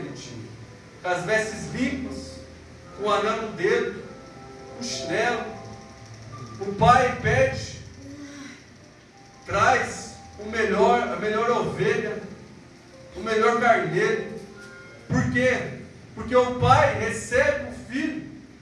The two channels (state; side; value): identical; both; correlation 1.00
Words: tinha. Com as vestes limpas, com o anel no dedo, o chinelo. O Pai pede, traz a melhor ovelha, o melhor carneiro. Por quê? Porque o pai recebe o filho